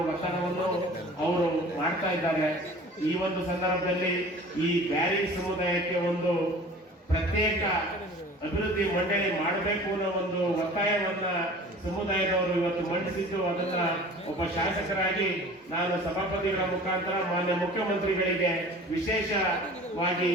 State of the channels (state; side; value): normal; both; correlation 0.44